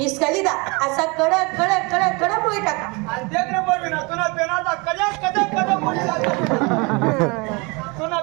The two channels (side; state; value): left; quieter; 28.4 dB